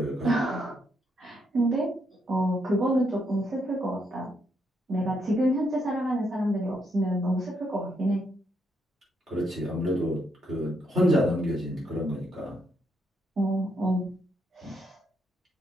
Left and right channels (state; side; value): normal; both; correlation 0.77